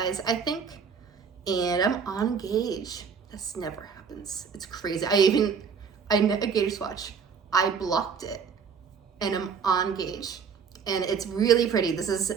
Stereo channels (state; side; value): quieter; left; 6.3 dB